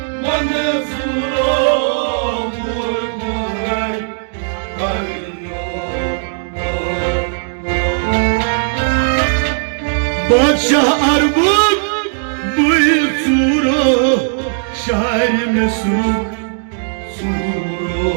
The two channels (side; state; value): left; silent; digital silence